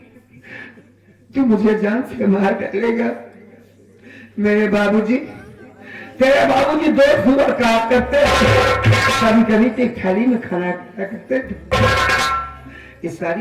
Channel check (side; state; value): both; identical; correlation 1.00